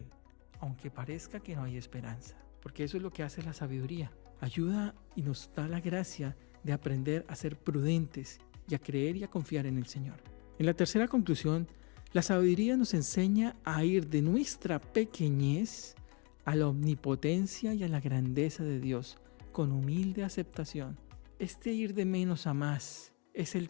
aunque parezca que no hay esperanza. Porque eso es lo que hace la sabiduría. Ayuda y nos da la gracia de aprender a ser prudentes y a creer y a confiar en el Señor. En la tercera conclusión, la sabiduría nos enseña a ir de nuestra pequeñez a la omnipotencia y a la grandeza de Dios, con humilde aceptación. Este ir de menos a más es el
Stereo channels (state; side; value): quieter; right; 32.7 dB